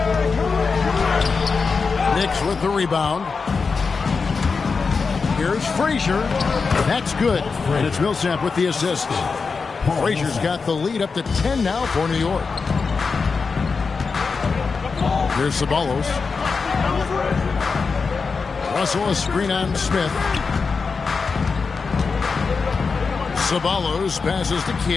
Knicks with the rebound. Here's Frazier. That's good. And it's Millsap with the assist. Frazier's got the lead up to 10 now for New York. Here's Ceballos. Russell a screen on Smith. Ceballos passes to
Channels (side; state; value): right; quieter; 4.8 dB